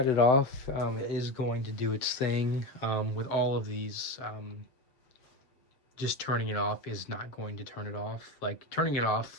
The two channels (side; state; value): right; late; 7.6 ms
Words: it off, it is going to do its thing. With all of these, just turning it off is not going to turn it off. Like, turning it